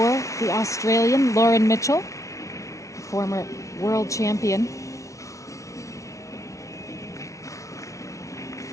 the Australian Lauren Mitchell, former world champion.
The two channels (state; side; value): late; right; 0.15 ms